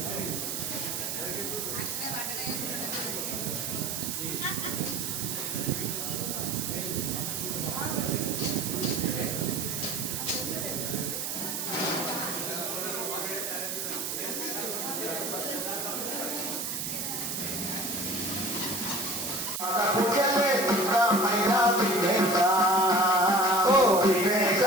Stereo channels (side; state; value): right; noise; hiss, 3 dB below the sound